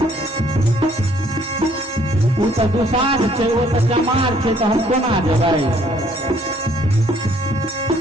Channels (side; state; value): both; normal; correlation 0.63